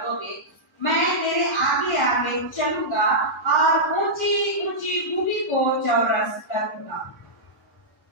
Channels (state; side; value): normal; both; correlation -0.11